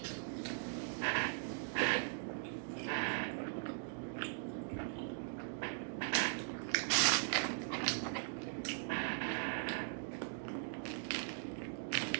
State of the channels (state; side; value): silent; left; digital silence